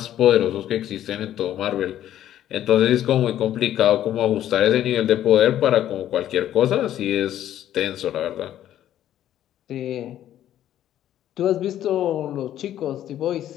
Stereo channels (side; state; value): right; quieter; 11.8 dB